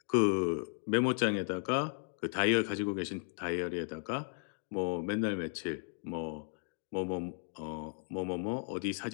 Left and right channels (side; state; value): right; silent; 54 dB below the other